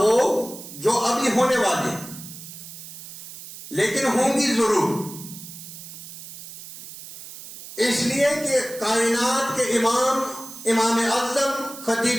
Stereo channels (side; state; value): right; noise; hiss, 14 dB below the sound